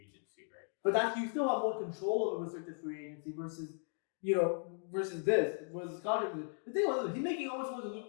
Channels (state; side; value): silent; right; 53 dB below the other